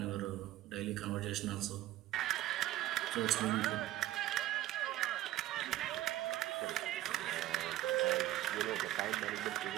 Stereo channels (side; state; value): left; quieter; 14.9 dB